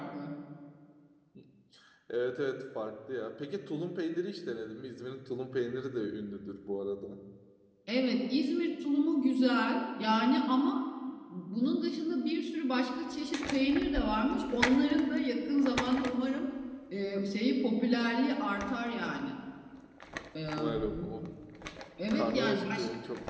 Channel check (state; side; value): identical; both; correlation 1.00